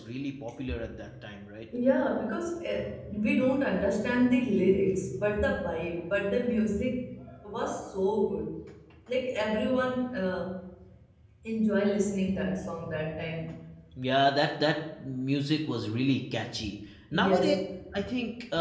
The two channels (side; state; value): both; identical; correlation 1.00